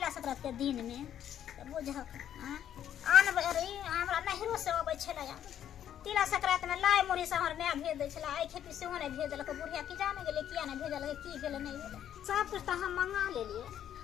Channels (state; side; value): quieter; right; 10.3 dB